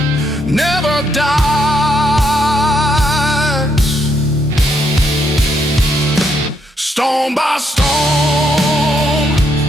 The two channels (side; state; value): both; normal; correlation 0.75